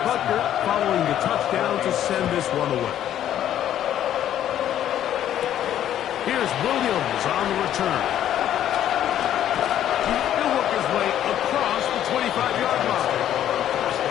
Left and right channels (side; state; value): right; quieter; 11.1 dB